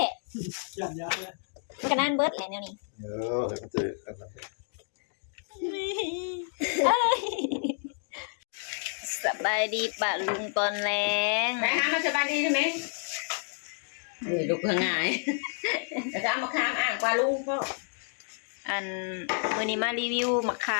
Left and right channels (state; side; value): silent; right; 56 dB below the other